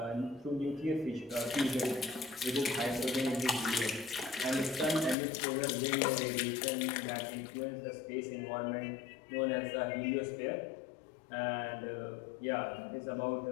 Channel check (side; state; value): right; drops out; at 5.2 s